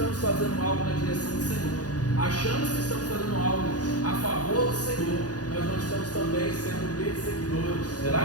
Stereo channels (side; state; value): right; late; 0.68 ms